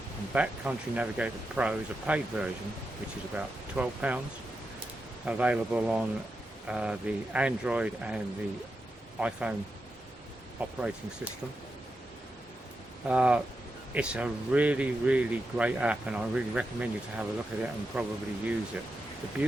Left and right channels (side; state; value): both; normal; correlation 0.88